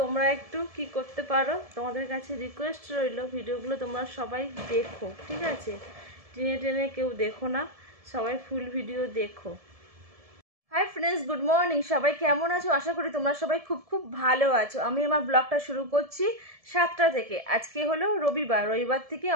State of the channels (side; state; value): left; late; 1.7 ms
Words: একটু কি করতে পারো, তোমাদের কাছে রিকোয়েস্ট রইল, ভিডিওগুলো তোমরা সবাই দেখো, ঠিক আছে? টেনে টেনে কেউ দেখো না, সবাই ফুল ভিডিও দেখো। Hi friends, good morning. সবাই কেমন আছো? আশা করি তোমরা সবাই খুব খুব ভালো আছো। আমি আমার ব্লগটা শুরু করছি 7টা থেকে। আজকে হলো রবিবার থেকে